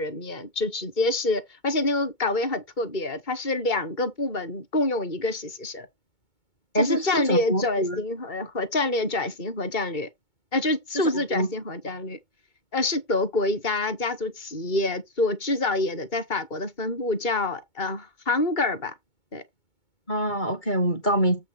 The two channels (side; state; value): right; late; 2.2 ms